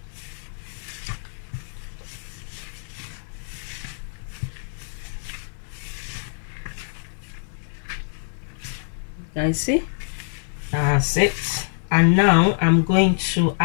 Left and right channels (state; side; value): silent; right; 60 dB below the other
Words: Guys, see, that's it. And now I'm going to